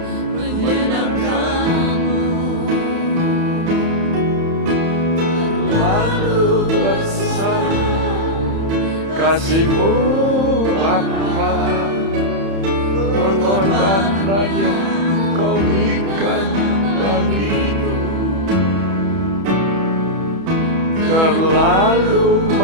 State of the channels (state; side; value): late; left; 31 ms